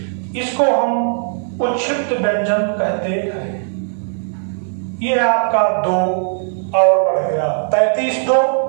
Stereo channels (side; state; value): left; silent; 59 dB below the other